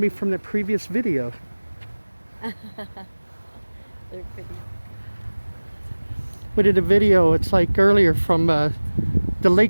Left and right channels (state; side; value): inverted; both; correlation -1.00